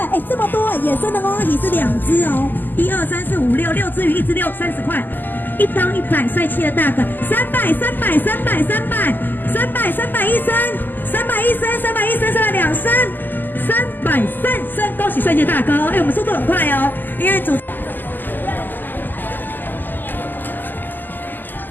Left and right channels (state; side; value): late; right; 0.089 ms